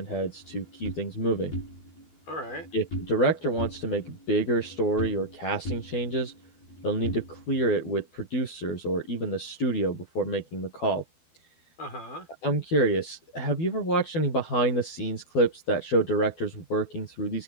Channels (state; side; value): late; right; 12 ms